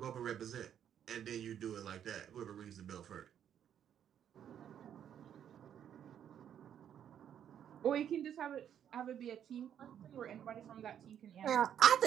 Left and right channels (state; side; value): quieter; left; 9.4 dB